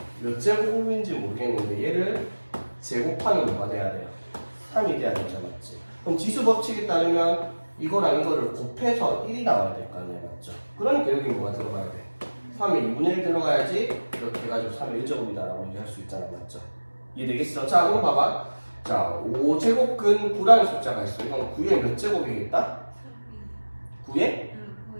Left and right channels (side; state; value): both; inverted; correlation -1.00